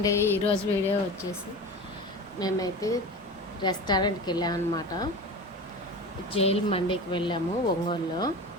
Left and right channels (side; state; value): both; normal; correlation 0.31